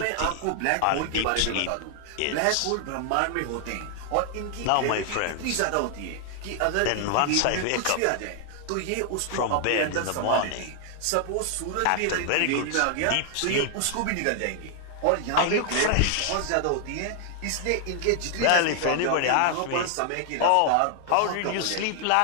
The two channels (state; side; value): different; both; correlation 0.00